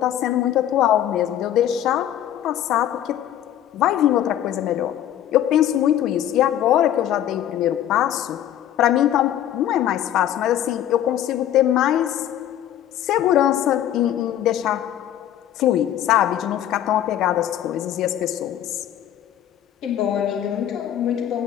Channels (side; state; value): right; quieter; 11.4 dB